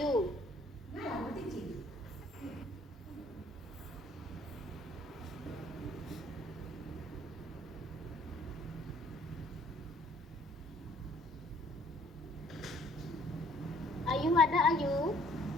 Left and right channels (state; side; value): normal; both; correlation 0.59